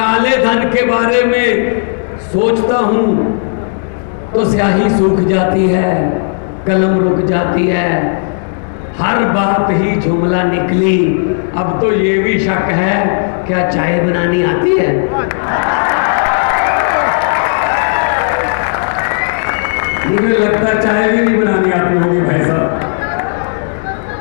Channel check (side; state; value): right; silent; digital silence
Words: धन के बारे में सोचता हूं तो स्याही सूख जाती है, कलम रुक जाती है। हर बात ही जुमला निकली। अब तो ये भी शक है, क्या चाय बनानी आती है? मुझे लगता है चाय भी नहीं बनानी आती होगी भाई साहब,